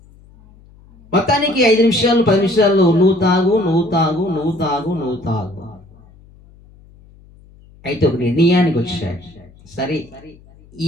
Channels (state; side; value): noise; left; hum, 26 dB below the sound